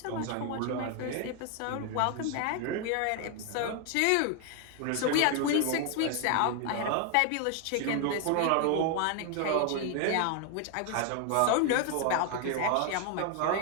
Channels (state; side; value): different; both; correlation 0.00